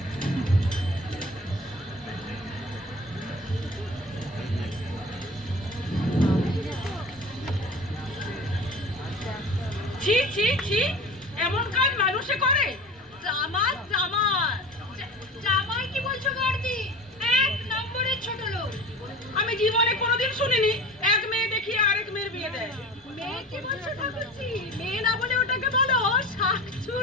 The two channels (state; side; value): normal; both; correlation 0.37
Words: ছি ছি, এমন কাজ মানুষে করে? জামাই জামাই জামাই কি বলছো বর্দি? এক নম্বরের ছোট লোক। আমি জীবনে কোনোদিন শুনিনি এক মেয়ে দেখিয়ে আরেক মেয়ের বিয়ে দেয়। মেয়ে কি বলছো ঠাকুরজি? মেয়ে না বলে ওটাকে বলো